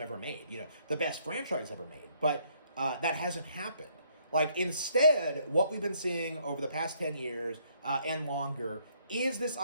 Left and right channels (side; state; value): both; inverted; correlation -0.68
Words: made, the best franchise ever made. But that hasn't happened. Like, instead, what we've been seeing over the past 10 years and longer is this